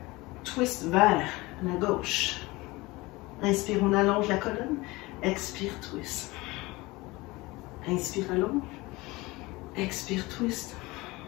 Twist vers la gauche. Inspire, on allonge la colonne. Expire, twist. Inspire, allonge. Expire, twist.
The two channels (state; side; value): quieter; right; 21.8 dB